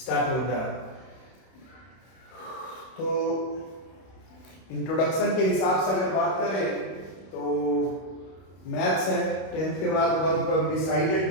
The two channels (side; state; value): right; late; 31 ms